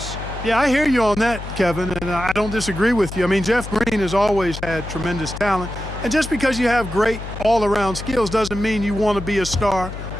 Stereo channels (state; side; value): noise; left; hum, 10 dB below the sound